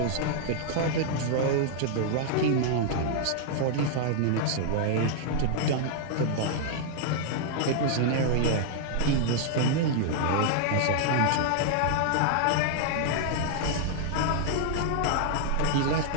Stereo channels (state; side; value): different; both; correlation -0.01